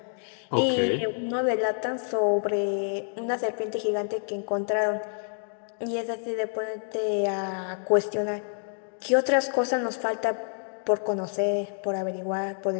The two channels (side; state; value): right; silent; digital silence